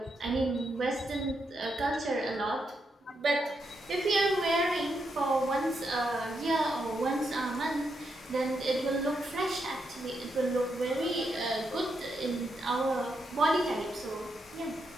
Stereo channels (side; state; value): both; normal; correlation 0.82